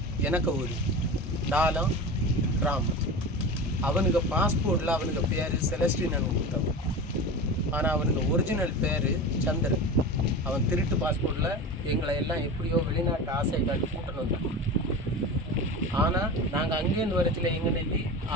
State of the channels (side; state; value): both; normal; correlation 0.29